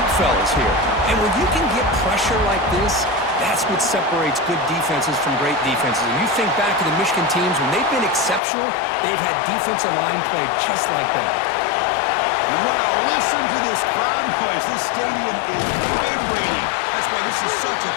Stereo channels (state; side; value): drops out; right; at 8.4 s